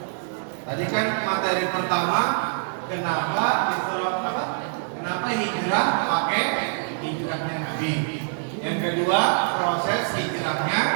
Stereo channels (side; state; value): left; silent; 62 dB below the other